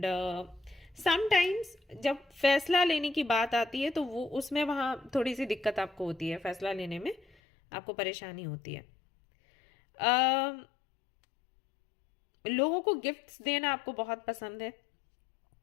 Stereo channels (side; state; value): right; drops out; at 7.4 s